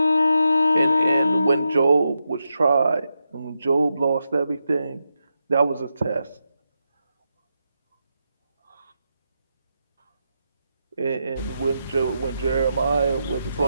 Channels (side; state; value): both; inverted; correlation -0.86